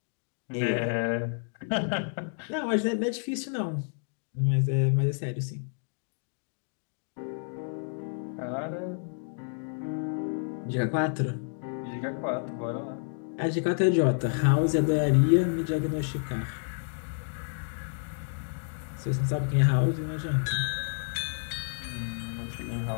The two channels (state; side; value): silent; right; digital silence